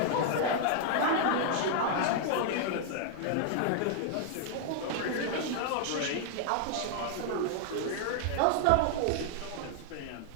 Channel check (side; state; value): both; different; correlation 0.00